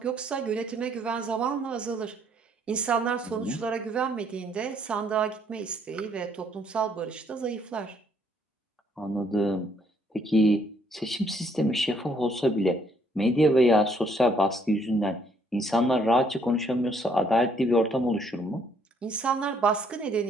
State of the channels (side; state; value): both; normal; correlation 0.67